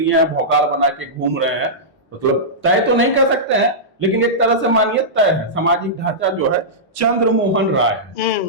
है, भौकाल बना के घूम रहे हैं। मतलब तय तो नहीं कर सकते हैं, लेकिन एक तरह से मानिए तय है। सामाजिक ढांचा जो है चंद्रमोहन राय है,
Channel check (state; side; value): normal; both; correlation -0.14